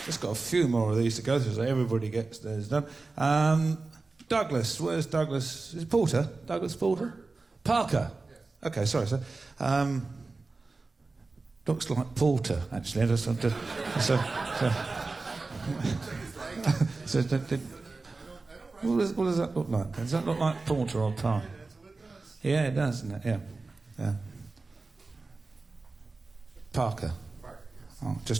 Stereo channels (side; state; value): left; quieter; 3.7 dB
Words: Just got a few more of these to go through so everybody gets theirs done. Douglas, where's Douglas? Is it Porter? Douglas Porter? Parker? Yes. Okay, sorry, sir. Looks like Porter, actually. What does that look like? Does that look like Porter or Parker? Yeah, it does, doesn't it? Yeah. Parker. Oh,